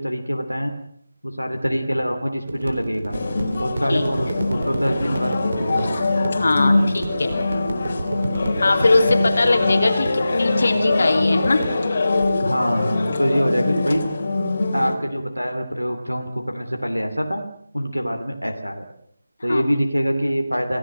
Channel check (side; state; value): both; inverted; correlation -0.95